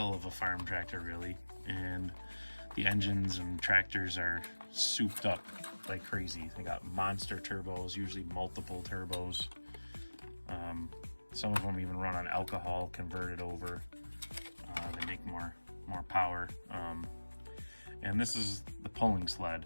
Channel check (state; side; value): inverted; both; correlation -1.00